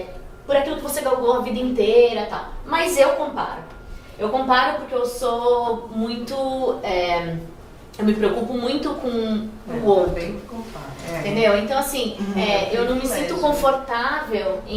por aquilo que você galgou a vida inteira e tal. Mas eu comparo. Eu comparo porque eu sou muito... eu me preocupo muito com o outro. Entendeu? Então, assim, eu não me sinto confortável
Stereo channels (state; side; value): identical; both; correlation 1.00